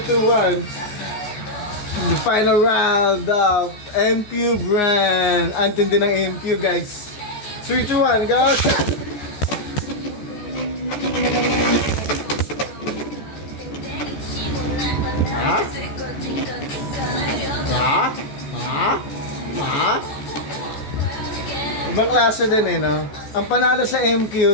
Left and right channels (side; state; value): right; late; 14 ms